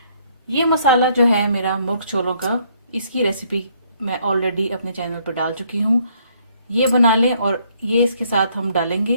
ये मसाला जो है मेरा मुर्ग छोलों का, इसकी रेसिपी मैं ऑलरेडी अपने चैनल पर डाल चुकी हूँ। ये बना लें और ये इसके साथ हम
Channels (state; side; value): inverted; both; correlation -0.67